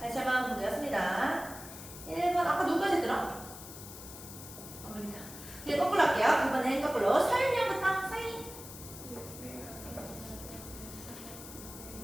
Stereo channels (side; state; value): left; noise; hiss, 13 dB below the sound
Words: 다시 한번 보겠습니다. 1번 아까 누구까지 들어? 그러니까 이제 거꾸로 할게요. 이번엔 거꾸로 서윤이 형부터. 서윤이